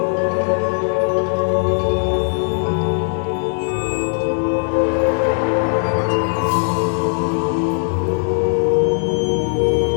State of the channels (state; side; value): silent; right; 59 dB below the other